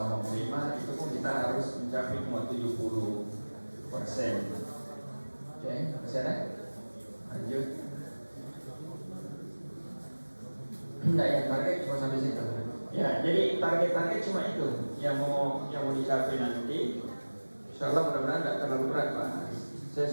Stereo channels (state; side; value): inverted; both; correlation -1.00